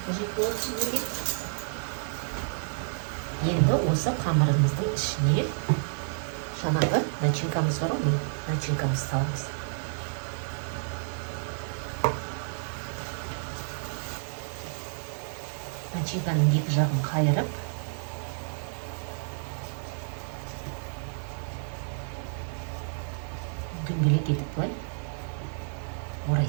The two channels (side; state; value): left; silent; 58 dB below the other